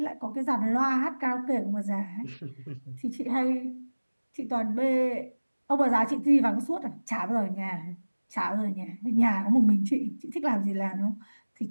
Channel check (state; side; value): inverted; both; correlation -1.00